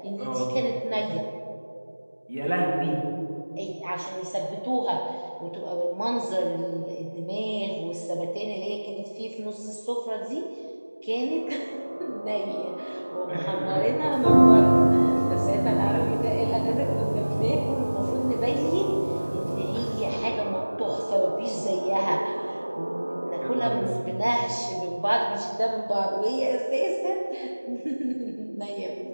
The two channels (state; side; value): inverted; both; correlation -1.00